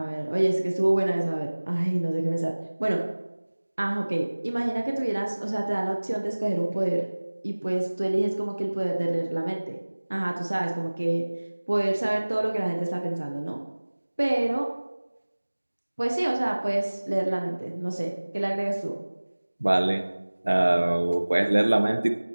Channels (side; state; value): both; inverted; correlation -1.00